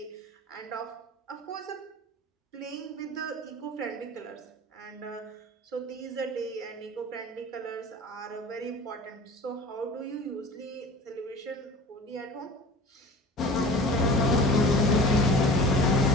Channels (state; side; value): normal; both; correlation 0.40